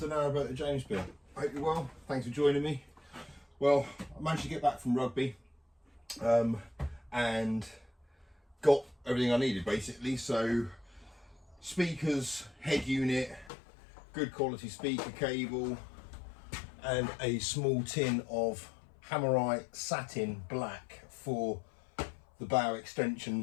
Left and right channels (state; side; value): drops out; right; at 13.5 s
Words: Narrowboat the James Bill. Hope you're well. Thanks for joining me. Well, I managed to get back from rugby and got everything I needed basically. So speakers, head unit, good quality speaker cable, and a small tin of Hammerite satin black for the bow